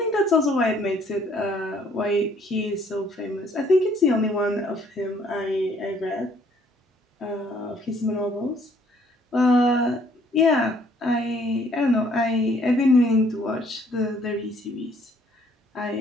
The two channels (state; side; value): normal; both; correlation 0.62